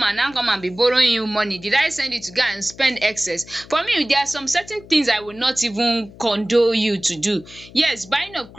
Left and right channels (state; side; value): noise; left; hum, 20 dB below the sound